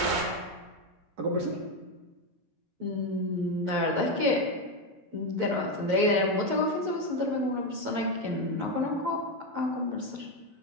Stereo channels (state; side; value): late; left; 10 ms